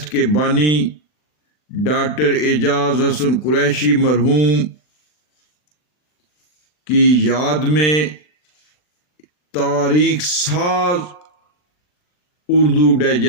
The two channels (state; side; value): late; right; 40 ms